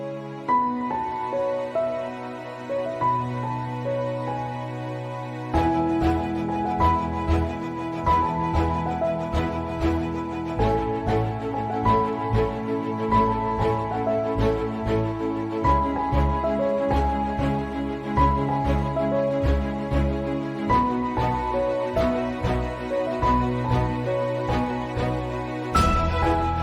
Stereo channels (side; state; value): both; identical; correlation 1.00